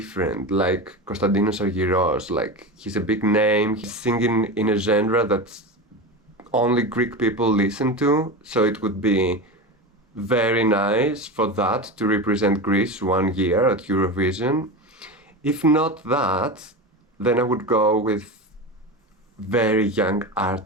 like Konstantinos Argyros. Like, he's a big name, he's singing in a genre that only Greek people listen to, so it would be very nice for that to represent Greece one year at Eurovision. If not that, then I would go with very young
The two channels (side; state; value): both; normal; correlation 0.23